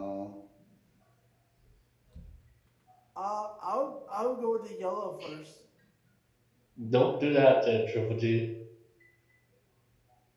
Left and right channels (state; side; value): identical; both; correlation 1.00